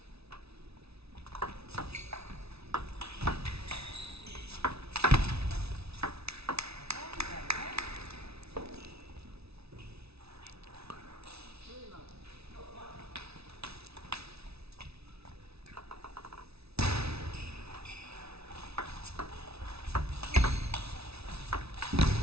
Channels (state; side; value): late; left; 0.79 ms